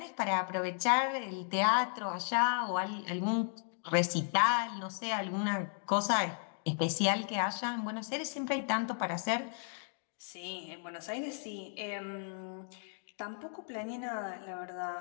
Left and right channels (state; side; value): silent; right; 55 dB below the other